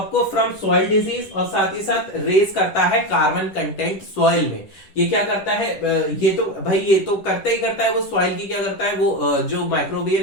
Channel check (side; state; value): right; late; 10 ms